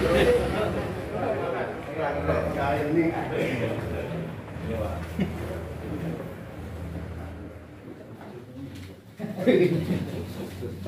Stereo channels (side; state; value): both; identical; correlation 1.00